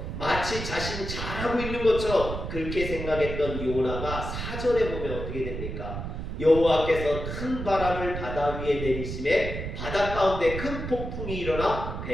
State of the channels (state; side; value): noise; right; rumble, 6 dB below the sound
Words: 마치 자신이 잘하고 있는 것처럼 그렇게 생각했던 요나가 4절에 보면 어떻게 됩니까? 여호와께서 큰 바람을 바다 위에 내리심에 바다 가운데 큰 폭풍이 일어나